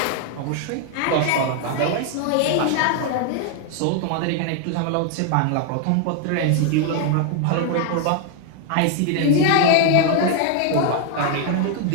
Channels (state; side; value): different; both; correlation 0.00